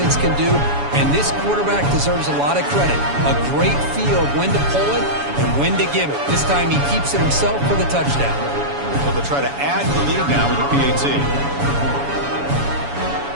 can do, and this quarterback deserves a lot of credit. A great feel of when to pull it and when to give it. This time he keeps it himself for the touchdown. So they'll try to add the lead now with the PAT.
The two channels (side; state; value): left; late; 7.1 ms